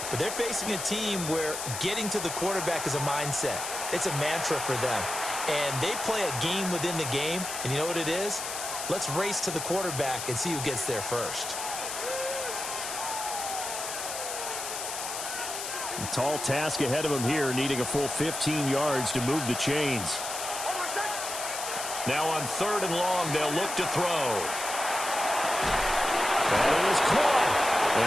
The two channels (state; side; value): noise; left; hiss, 5 dB below the sound